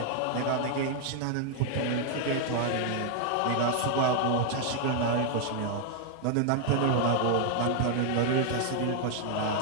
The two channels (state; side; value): different; both; correlation 0.00